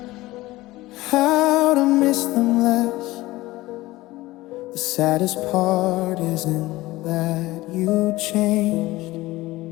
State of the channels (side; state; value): right; quieter; 18.6 dB